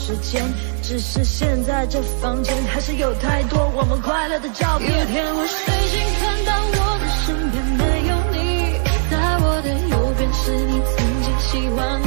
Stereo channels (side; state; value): left; silent; 63 dB below the other